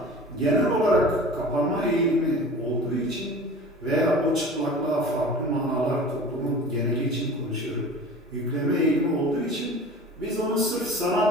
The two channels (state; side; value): normal; both; correlation 0.39